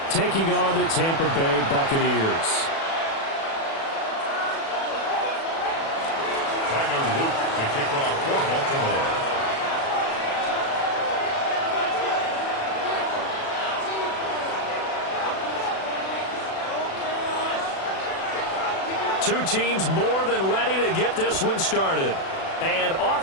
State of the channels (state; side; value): late; right; 36 ms